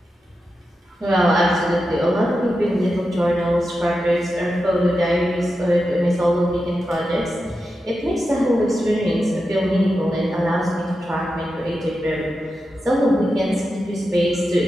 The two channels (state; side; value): normal; both; correlation 0.90